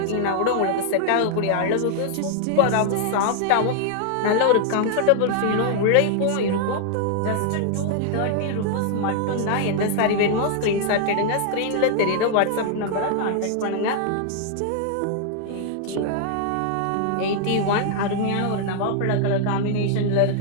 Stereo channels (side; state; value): both; different; correlation 0.00